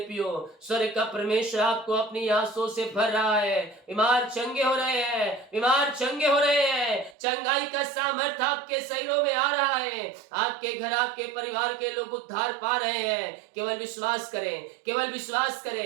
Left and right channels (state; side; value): drops out; left; at 7.2 s